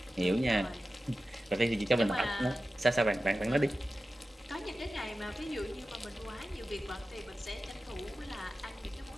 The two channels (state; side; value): normal; both; correlation 0.93